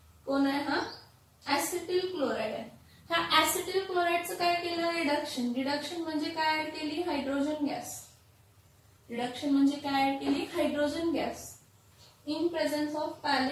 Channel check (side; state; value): both; identical; correlation 1.00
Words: कोण आहे? हा ऍसिटिल क्लोराइड आहे. ह्या ऍसिटिल क्लोराइडचं काय केलं? रिडक्शन. रिडक्शन म्हणजे काय ऍड केली? Hydrogen gas. रिडक्शन म्हणजे काय ऍड केली? Hydrogen gas in presence of